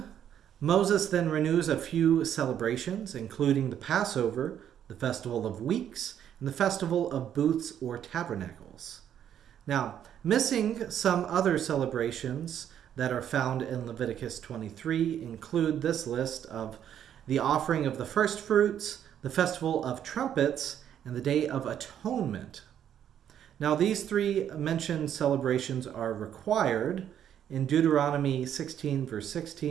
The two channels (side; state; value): left; quieter; 9.8 dB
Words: Moses then renews a few celebrations, including the Passover, the Festival of Weeks, and the Festival of Booths or Tabernacles. Now, missing some other celebrations that are found in Leviticus 23 include this list of the offering of the first fruits, the festival of trumpets, and the Day of Atonement. Now, these three mentioned celebrations are required in Deuteronomy 16, verse